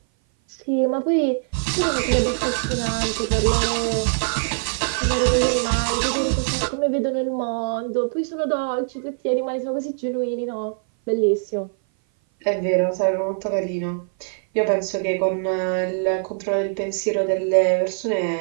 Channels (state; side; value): silent; left; 57 dB below the other